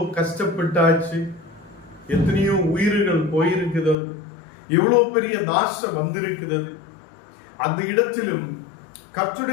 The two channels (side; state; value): right; drops out; at 4.0 s